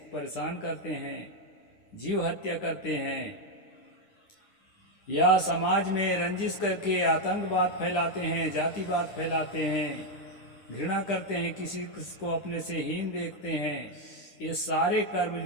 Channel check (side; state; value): right; late; 9.9 ms